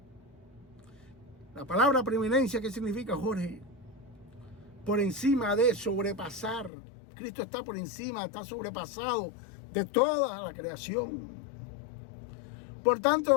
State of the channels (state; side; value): drops out; right; at 6.7 s